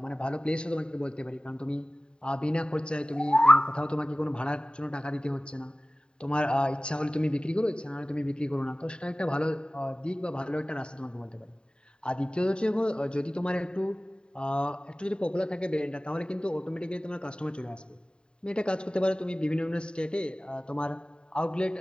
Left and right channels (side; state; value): right; late; 0.050 ms